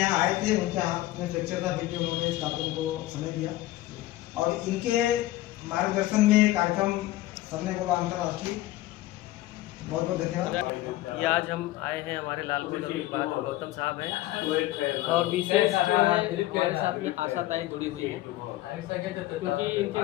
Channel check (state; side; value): quieter; right; 16.3 dB